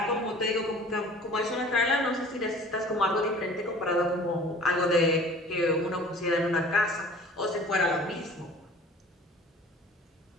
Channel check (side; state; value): both; normal; correlation 0.46